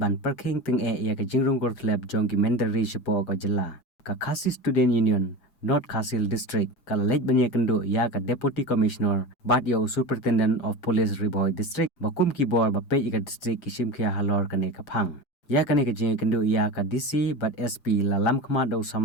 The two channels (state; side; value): late; right; 7.1 ms